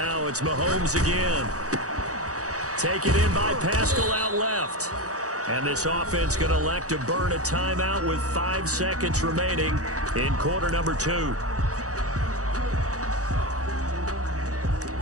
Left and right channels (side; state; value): left; late; 0.66 ms